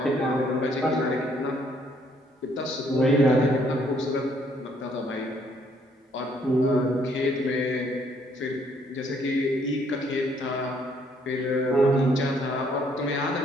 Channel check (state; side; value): normal; both; correlation 0.67